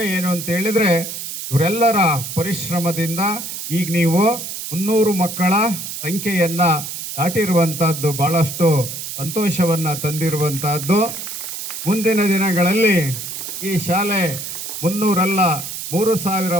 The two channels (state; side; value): noise; right; hiss, 7 dB below the sound